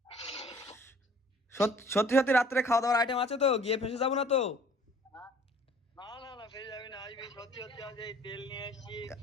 সত্যি সত্যি রাত্রে খাওয়া দাওয়ার আইটেম আছে তো? গিয়ে ফেসে যাবো না তো?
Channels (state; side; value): normal; both; correlation 0.53